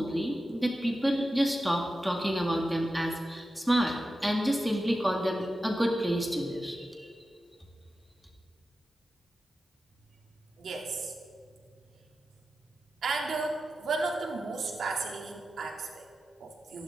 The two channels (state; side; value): normal; both; correlation 0.92